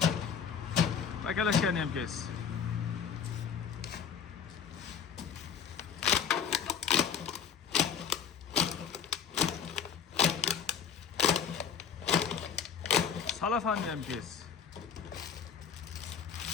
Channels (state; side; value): quieter; right; 7.3 dB